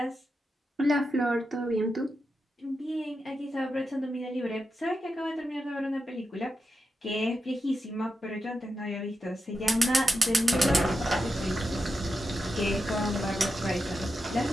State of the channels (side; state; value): both; normal; correlation 0.88